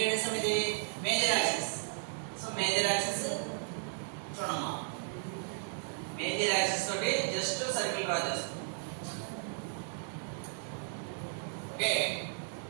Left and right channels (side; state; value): left; silent; digital silence